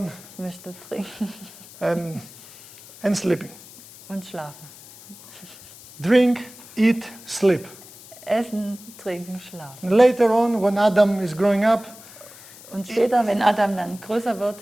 ich möchte trinken and sleeping. und schlafen. Drink, eat, sleep. Essen, trinken, schlafen. And later on, when Adam is growing up, Und später, wenn Adam dann größer wird,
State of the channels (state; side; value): noise; left; hiss, 19 dB below the sound